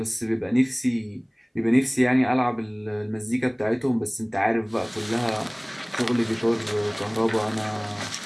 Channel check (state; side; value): identical; both; correlation 1.00